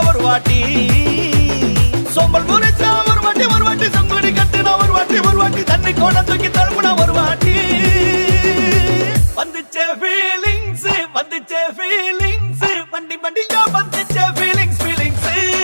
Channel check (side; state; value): both; inverted; correlation -1.00